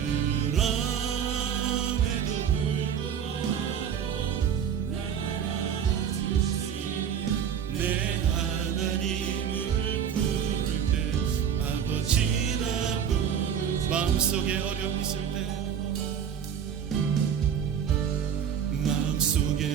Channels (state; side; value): quieter; left; 8.2 dB